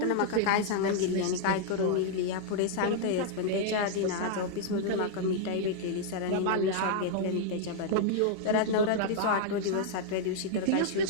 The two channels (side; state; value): both; different; correlation -0.01